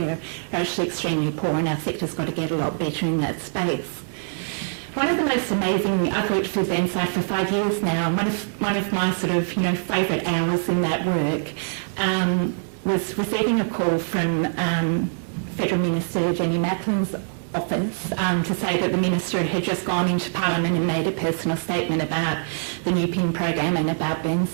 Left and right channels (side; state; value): left; silent; digital silence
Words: are actually extremely poor, and our sector's got to get a lot better in that space. One of the most amazing, I've worked for Burnside for 5 years now, one of my sort of, favourite hours in that work was receiving a call from Federal Minister Jenny Macklin's office to say that the Minister had just gone into Parliament and made a personal statement about the NewPin program and about